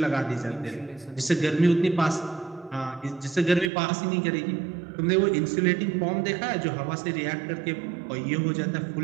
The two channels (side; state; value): left; drops out; at 3.7 s